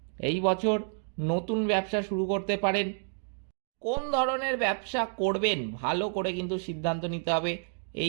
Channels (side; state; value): left; silent; 58 dB below the other